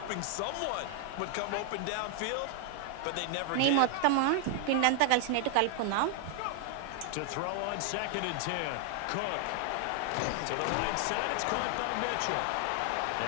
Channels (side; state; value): both; different; correlation 0.00